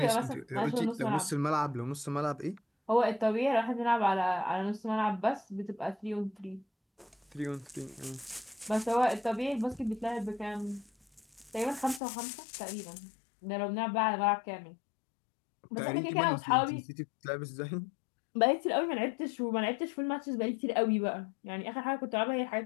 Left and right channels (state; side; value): drops out; right; at 12.0 s